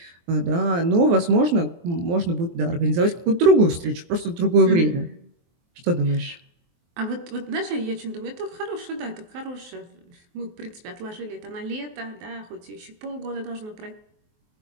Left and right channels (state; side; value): late; left; 23 ms